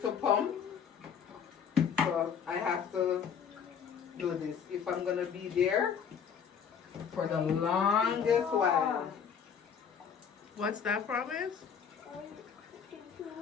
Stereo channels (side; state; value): right; quieter; 7.2 dB